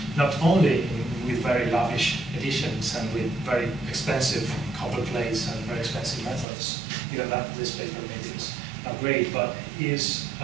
not only with very lavish editions and with very expensive copper plates and very expensive methods. Even that this paper maybe is not great, but his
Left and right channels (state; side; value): drops out; left; at 6.5 s